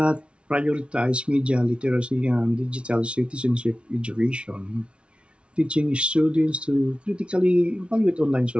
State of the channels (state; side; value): late; left; 0.059 ms